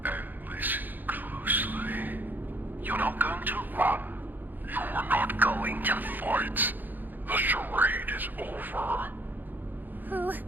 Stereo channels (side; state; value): left; late; 0.087 ms